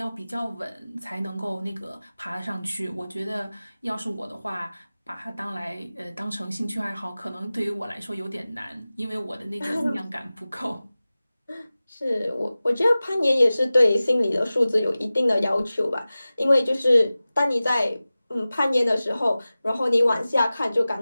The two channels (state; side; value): inverted; both; correlation -0.97